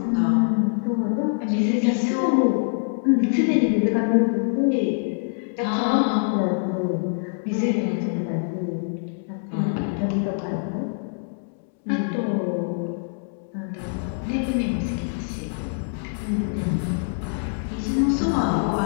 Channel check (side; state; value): right; silent; digital silence